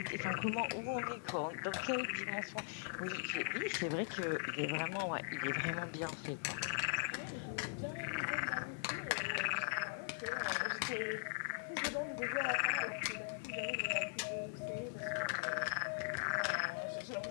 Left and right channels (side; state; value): right; silent; 51 dB below the other